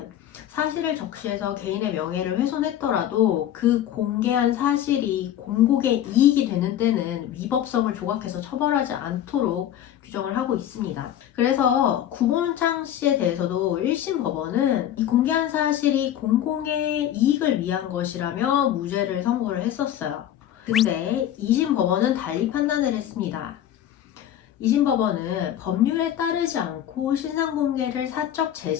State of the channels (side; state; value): right; quieter; 11.2 dB